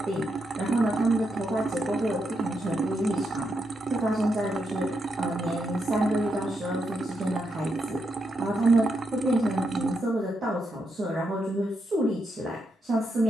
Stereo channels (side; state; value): both; normal; correlation 0.82